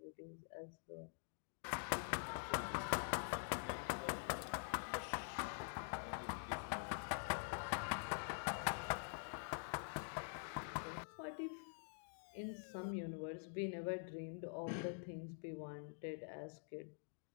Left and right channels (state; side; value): silent; right; digital silence